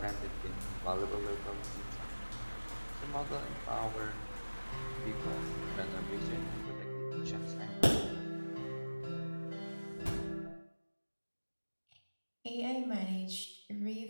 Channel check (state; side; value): inverted; both; correlation -1.00